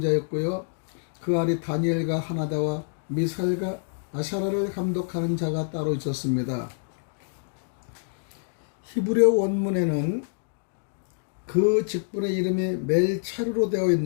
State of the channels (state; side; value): silent; right; digital silence